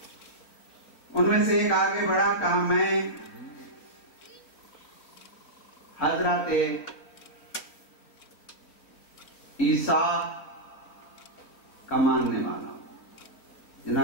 उनमें से एक आगे बढ़ा, कहा मैं हजरत ईसा का मानने वाला हूं।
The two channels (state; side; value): late; right; 4.4 ms